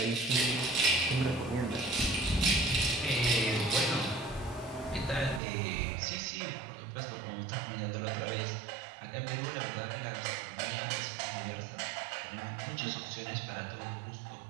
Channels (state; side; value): drops out; left; at 5.4 s